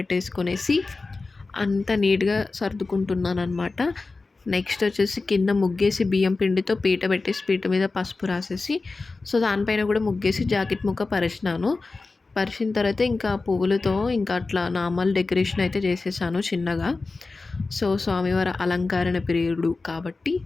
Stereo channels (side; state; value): right; quieter; 3.7 dB